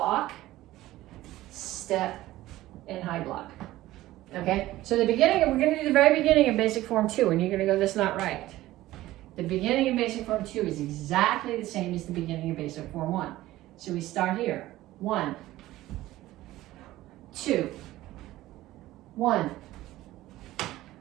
step, and high block. Okay, so the beginning, we're going to do the very beginning of basic form 2, and you're going to go, that's not right. The beginning of basic form 2 is exactly the same as the beginning of basic form 1. So we start here. 1, 2, 1,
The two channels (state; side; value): quieter; left; 16.1 dB